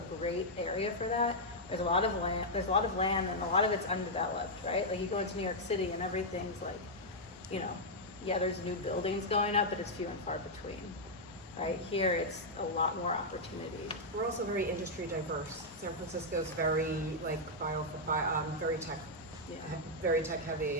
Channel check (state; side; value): normal; both; correlation -0.04